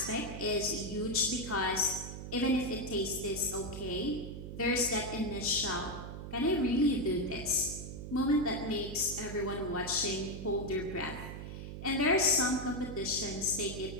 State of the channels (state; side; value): noise; right; hum, 9 dB below the sound